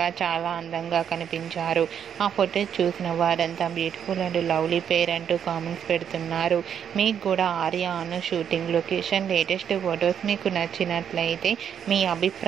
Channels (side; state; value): left; quieter; 8.5 dB